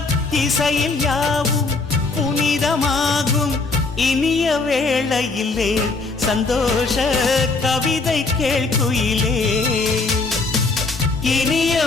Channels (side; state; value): right; quieter; 3.8 dB